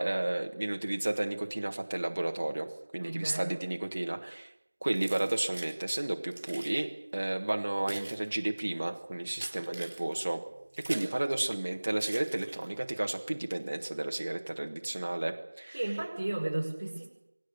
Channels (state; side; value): inverted; both; correlation -1.00